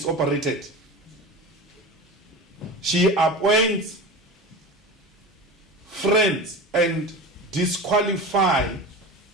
operated. She appoints friends and disqualify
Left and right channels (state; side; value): normal; both; correlation 0.30